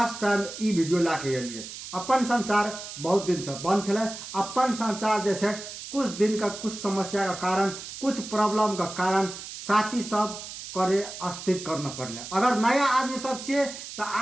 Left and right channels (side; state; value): right; noise; hiss, 11 dB below the sound